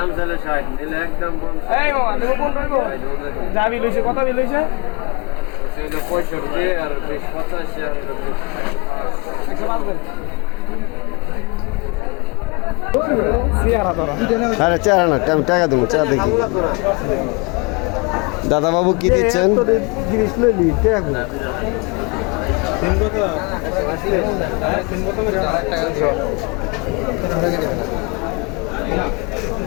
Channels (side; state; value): right; quieter; 27.5 dB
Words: চলে 60 নিলে একদম বন্ধ এই মামা তুমি 15 হইব? যা বিল হইছে, কত বিল হইছে? সেটা 65 আর 20 85 আর 105 সিয়ারা তোরা আরে চারা না টাকা দেবো চা দেখি দাদা বাবু কি দিচ্ছেন জিনিস লইলি টাকা